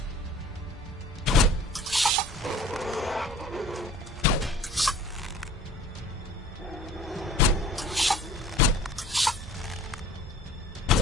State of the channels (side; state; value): both; normal; correlation 0.48